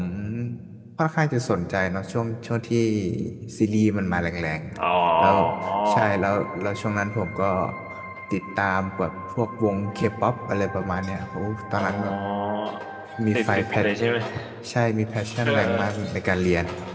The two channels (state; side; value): identical; both; correlation 1.00